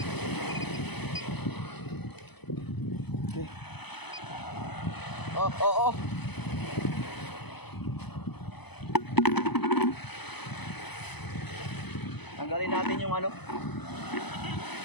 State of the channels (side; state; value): right; late; 0.99 ms